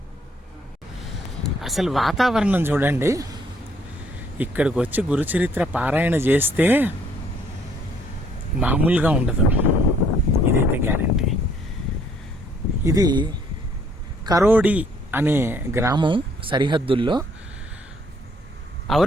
అసలు వాతావరణం చూడండి, ఇక్కడికి వచ్చి గురుచరిత్ర పారాయణ చేస్తే మామూలుగా ఉండదు, ఇదైతే గ్యారంటీ. ఇది కరోడి అనే గ్రామం సరిహద్దుల్లో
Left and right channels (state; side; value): normal; both; correlation 0.64